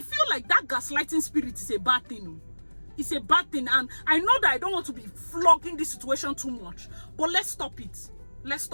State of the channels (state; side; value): inverted; both; correlation -1.00